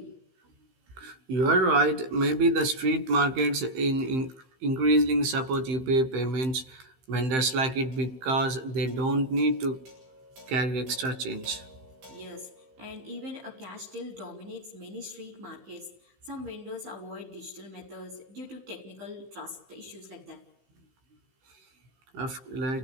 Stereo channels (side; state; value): left; late; 15 ms